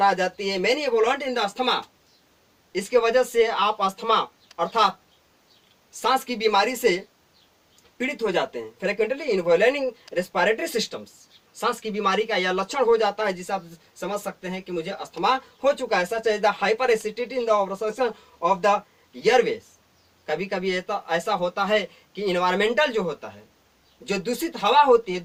आ जाती है। Many evolve in the asthma, इसके वजह से आप अस्थमा अर्थात सांस की बीमारी से पीड़ित हो जाते हैं। फ्रिक्वेंटली इन्वॉल्विंग रेस्पिरेटरी सिस्टम्स, सांस की बीमारी का यह लक्षण हो जाता है जिसे आप समझ सकते हैं कि मुझे अस्थमा हो चुका है। Such as the hyper acidity in the obstruction of the airways. कभी कभी ऐसा होता है कि इन्वायरमेंटल जो होता है, जो दूषित हवा होती है,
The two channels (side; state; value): both; identical; correlation 1.00